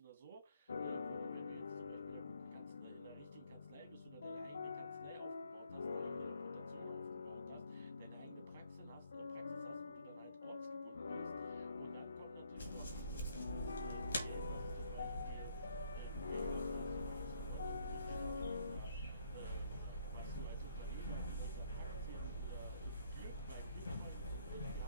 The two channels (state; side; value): inverted; both; correlation -0.66